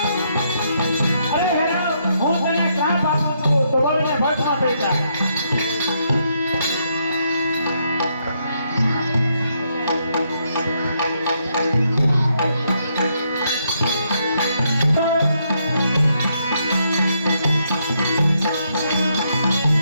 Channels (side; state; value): both; inverted; correlation -0.75